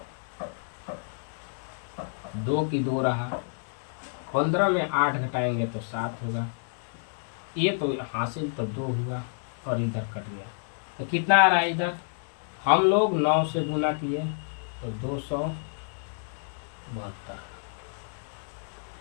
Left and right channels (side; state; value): right; silent; digital silence